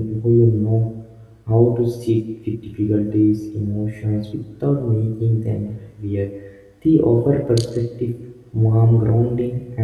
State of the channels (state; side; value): identical; both; correlation 1.00